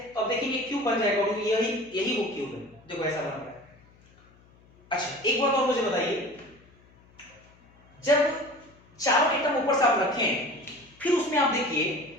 अब देखिए क्यूब बन जाएगा, और यही वो क्यूब है, देखो ऐसा बन गया। अच्छा, एक बात और मुझे बताइए, जब चारों एटम ऊपर से आप रखे हैं, फिर उसमें आप देखिए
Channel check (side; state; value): left; noise; hum, 28 dB below the sound